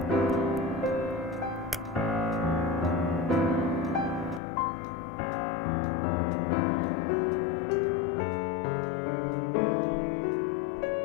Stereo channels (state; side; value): drops out; right; at 4.4 s